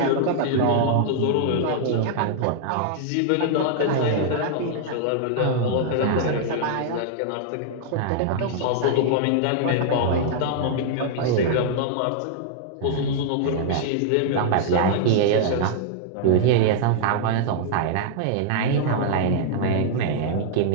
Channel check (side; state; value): both; different; correlation -0.01